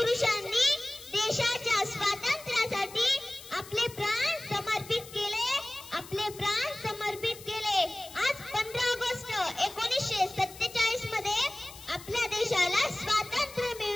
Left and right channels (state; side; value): noise; left; hiss, 17 dB below the sound